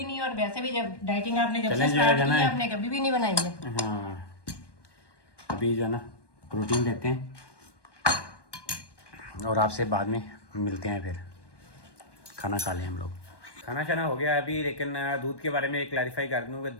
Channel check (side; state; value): right; late; 1.2 ms